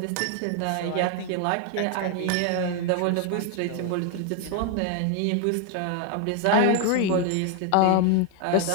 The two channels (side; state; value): both; different; correlation 0.00